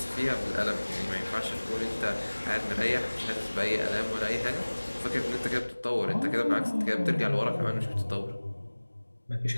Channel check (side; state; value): both; inverted; correlation -1.00